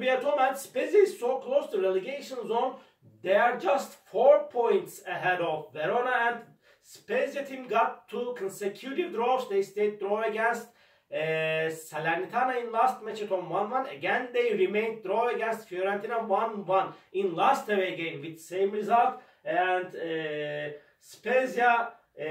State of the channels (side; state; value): both; identical; correlation 1.00